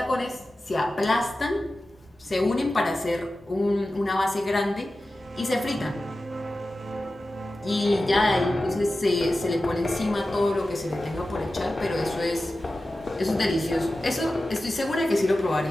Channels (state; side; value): normal; both; correlation 0.94